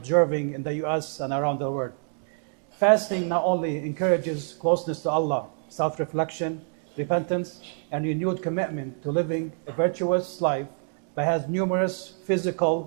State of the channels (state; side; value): silent; left; digital silence